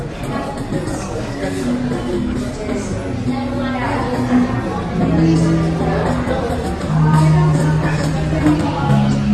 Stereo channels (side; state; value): both; identical; correlation 1.00